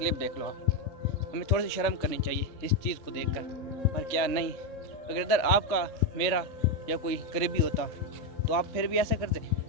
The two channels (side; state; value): right; late; 3.5 ms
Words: देख लो आप। हमें थोड़ी सी शर्म करनी चाहिए इस चीज़ को देखकर, और क्या नहीं। अगर इधर आपका मेरा या कोई करीबी होता तो आप फिर भी ऐसे करते,